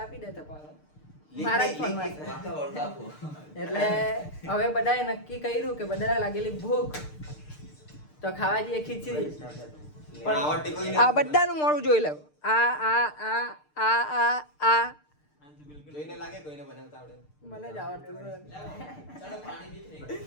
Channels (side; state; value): right; late; 6.6 ms